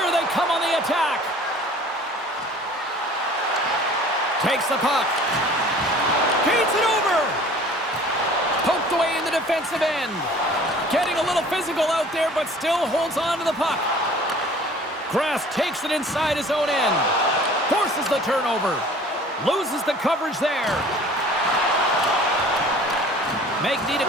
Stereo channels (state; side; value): normal; both; correlation 0.48